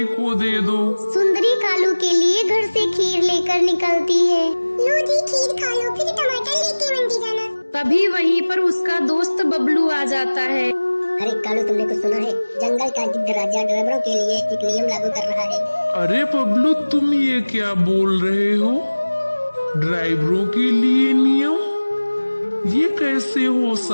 को दे दो। सुंदरी कालू के लिए घर से खीर लेकर निकलती है। लो जी खीर खा लो, फिर टमाटर लेके मंडी जाना। तभी वहीं पर उसका दोस्त बबलू आ जाता है। अरे कालू, तुमने कुछ सुना है? जंगल का गिद्ध राजा ड्राइवरों के लिए एक नियम लागू कर रहा है। अरे बबलू, तुम ये क्या बोल रहे हो? ड्राइवरों के लिए नियम? ये कैसे हो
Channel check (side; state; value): both; inverted; correlation -1.00